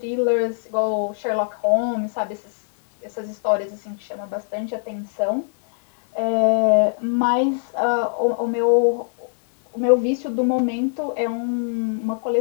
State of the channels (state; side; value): silent; right; digital silence